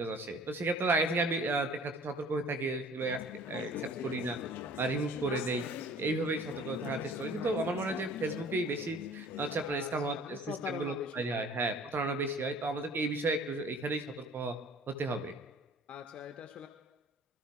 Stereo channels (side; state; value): both; normal; correlation 0.49